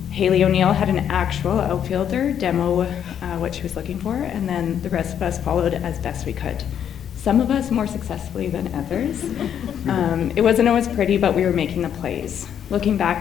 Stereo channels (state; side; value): quieter; right; 9.1 dB